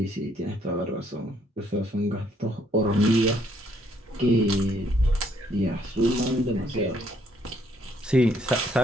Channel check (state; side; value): normal; both; correlation 0.68